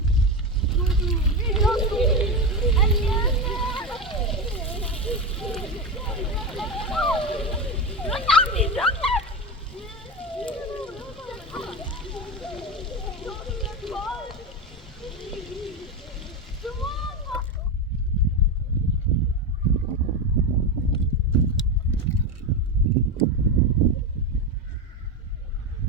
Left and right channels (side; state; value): both; normal; correlation 0.17